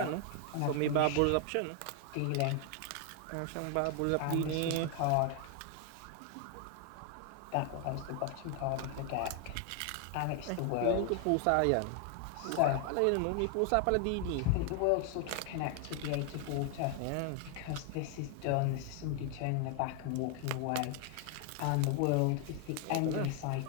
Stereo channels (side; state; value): both; different; correlation 0.00